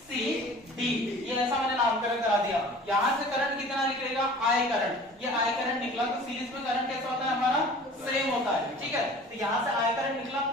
ये ऐसा मैंने नामकरण करा दिया। यहाँ से करंट कितना निकलेगा I करंट, ये I करंट निकला तो सीरीज में करंट कैसा होता है हमारा सेम होता है। ठीक है, तो यहाँ से I करंट निकला,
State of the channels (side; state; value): both; normal; correlation 0.44